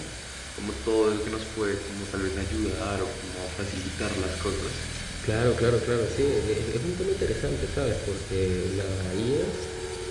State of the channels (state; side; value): identical; both; correlation 1.00